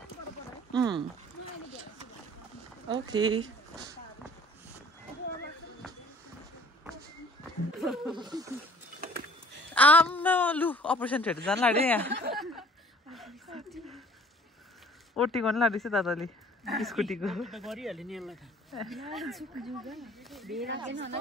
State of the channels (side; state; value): both; normal; correlation 0.52